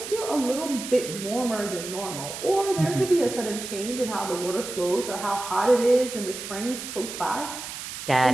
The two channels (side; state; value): right; noise; hiss, 9 dB below the sound